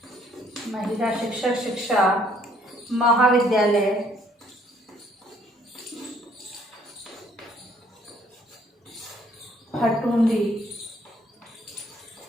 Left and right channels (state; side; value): normal; both; correlation 0.63